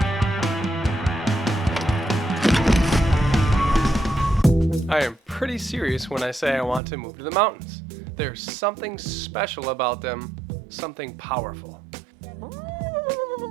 I am pretty serious when I say I want to move to the mountains. There's something special about them, something powerful.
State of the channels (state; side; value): drops out; left; at 6.8 s